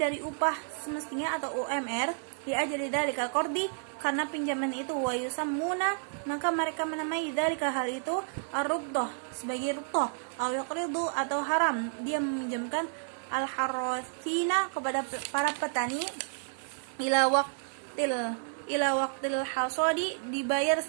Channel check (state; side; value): silent; left; digital silence